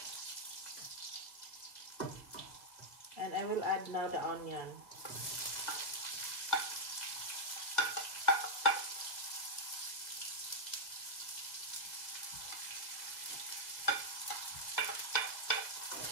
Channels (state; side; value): late; right; 1.9 ms